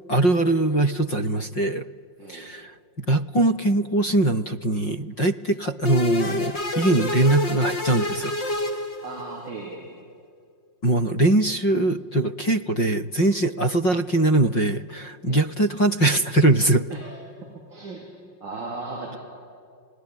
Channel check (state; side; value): late; right; 5.6 ms